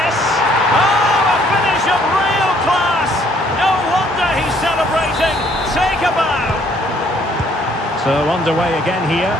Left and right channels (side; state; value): both; normal; correlation 0.63